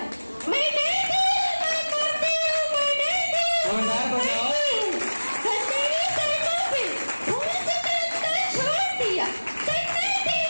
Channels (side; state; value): both; inverted; correlation -1.00